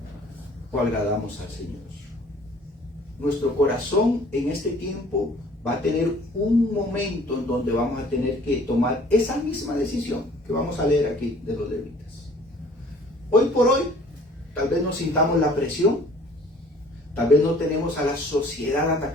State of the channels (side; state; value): both; normal; correlation 0.53